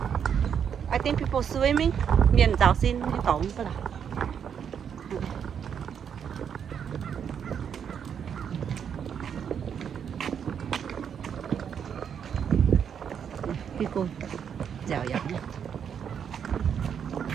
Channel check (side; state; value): left; quieter; 7.9 dB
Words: I think people swimming. Miền giáo xin tổng cái là. People, dạo dạo.